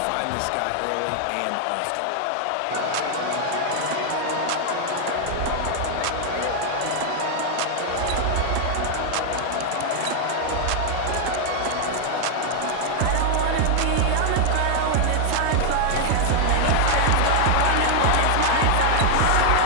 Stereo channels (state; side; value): different; both; correlation 0.00